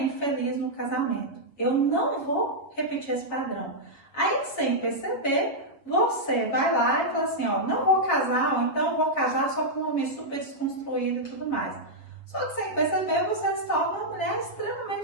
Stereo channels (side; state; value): right; late; 7.1 ms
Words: infeliz no casamento. Eu não vou repetir esse padrão. Aí, sem perceber, você vai lá e fala assim, não vou casar, ou então vou casar só com um homem super desconstruído e tudo mais. Só que sem perceber, você se torna uma mulher